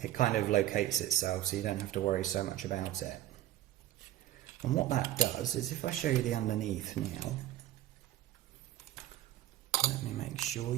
It kind of locates itself, so you don't have to worry so much about it. And what that does is, if I show you the underneath now, let me make sure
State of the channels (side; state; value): left; quieter; 13.9 dB